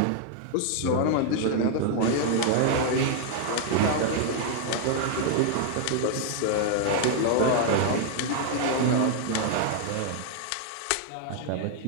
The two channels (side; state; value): both; different; correlation 0.00